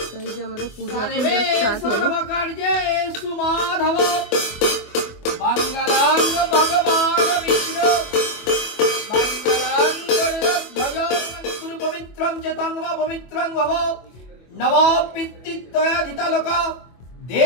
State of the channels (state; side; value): late; right; 24 ms